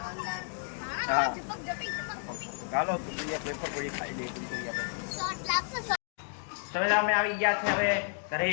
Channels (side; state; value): right; silent; 57 dB below the other